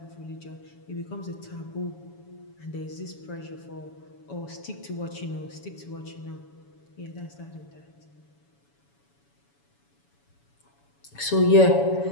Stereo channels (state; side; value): late; right; 7.1 ms